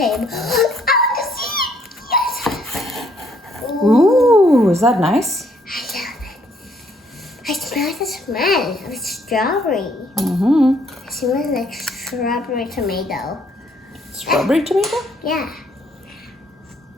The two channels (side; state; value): both; normal; correlation 0.67